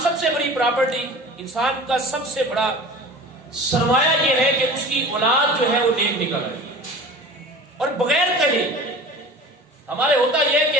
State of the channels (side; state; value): both; normal; correlation 0.39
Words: سب سے بڑی پراپرٹی، انسان کا سب سے بڑا سرمایہ یہ ہے کہ اس کی اولاد جو ہے وہ نیک نکل آئے اور بغیر کہے. ہمارے ہوتا یہ ہے